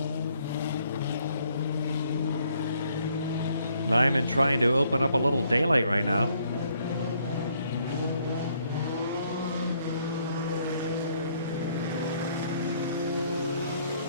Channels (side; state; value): both; inverted; correlation -0.68